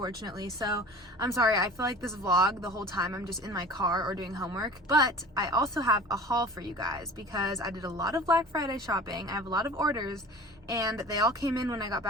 So I'm sorry, I feel like this vlog, the whole time I'm just in my car or doing homework. But I also have a haul for you guys because I did a lot of Black Friday shopping. I have a lot of orders and they all came in when I got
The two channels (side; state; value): both; normal; correlation 0.41